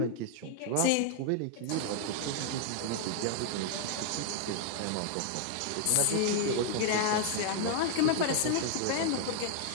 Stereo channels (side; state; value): both; different; correlation 0.00